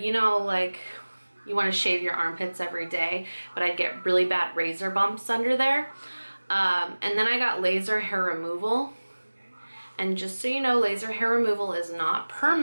know, like you want to shave your armpits every day, but I'd get really bad razor bumps under there. And then I got laser hair removal, and just so you know, laser hair removal is not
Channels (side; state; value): both; inverted; correlation -1.00